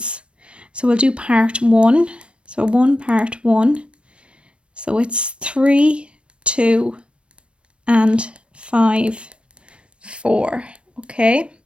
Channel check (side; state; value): left; late; 0.059 ms